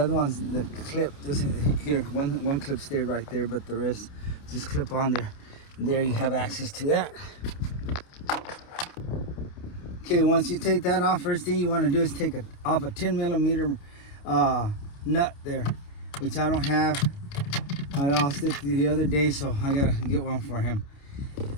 one's the clip just here. One clip stayed right there, but the rest just clip on there. And there you have access to that. Okay, once you take that off, first thing you want to do is take off a 10 millimeter nut there, which I don't have. I lost it the other day, so I gotta get one for him.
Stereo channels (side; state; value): right; late; 29 ms